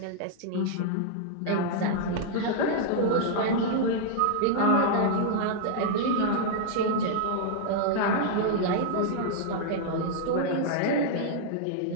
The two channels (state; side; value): different; both; correlation -0.01